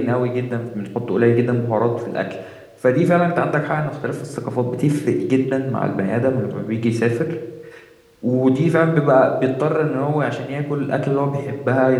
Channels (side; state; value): both; identical; correlation 1.00